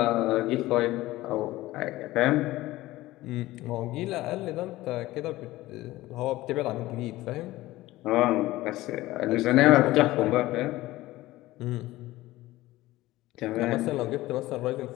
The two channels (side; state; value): right; quieter; 17.4 dB